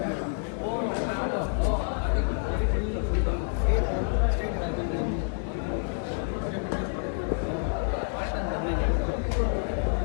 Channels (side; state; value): right; silent; 59 dB below the other